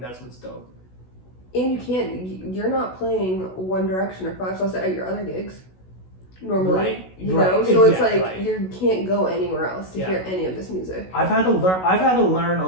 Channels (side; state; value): right; late; 16 ms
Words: that's what's dope. And you're not playing One Direction or Five Sauce at your other gigs normally, right, you know. So it's like right. You can't go anywhere else to hear any of this music. I've had to learn